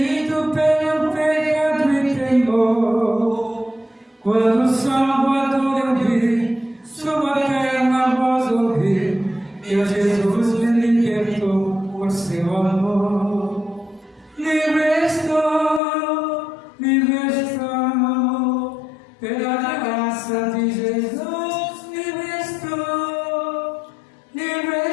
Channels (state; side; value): drops out; right; at 15.8 s